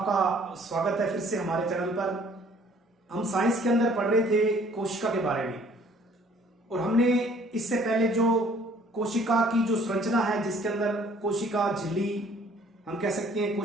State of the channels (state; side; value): normal; both; correlation 0.57